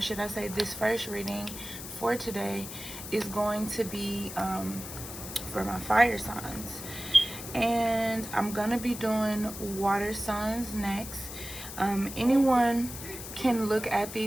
I say this first reading for today, is going to be for my fire signs, and I'm gonna be doing water signs next. Anyone can look at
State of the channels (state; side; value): noise; left; hiss, 10 dB below the sound